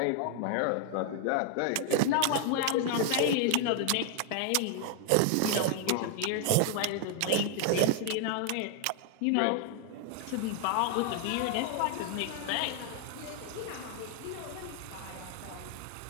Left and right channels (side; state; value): both; different; correlation 0.00